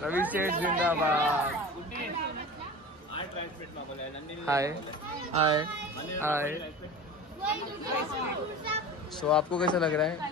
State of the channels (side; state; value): both; normal; correlation 0.34